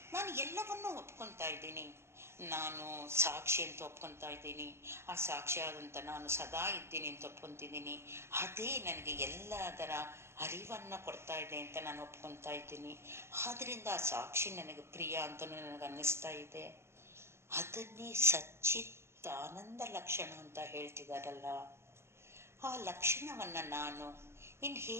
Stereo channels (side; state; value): left; late; 0.12 ms